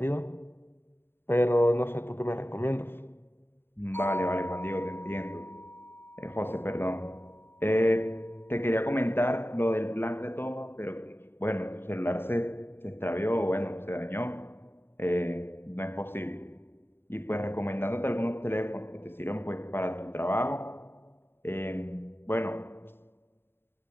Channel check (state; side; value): late; right; 0.11 ms